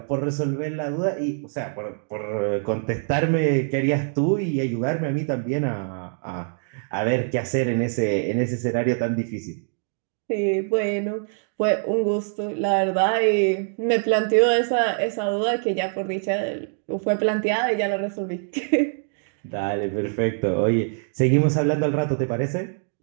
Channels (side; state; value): left; silent; 62 dB below the other